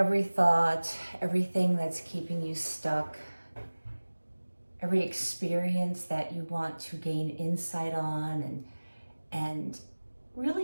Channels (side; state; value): both; inverted; correlation -1.00